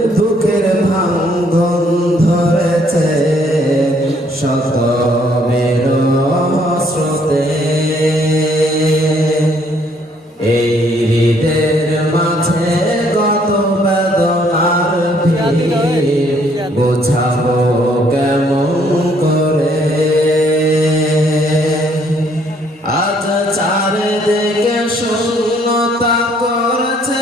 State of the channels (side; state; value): both; normal; correlation 0.65